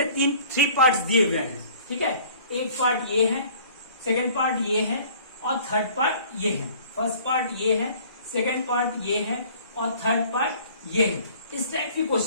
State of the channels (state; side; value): inverted; both; correlation -0.52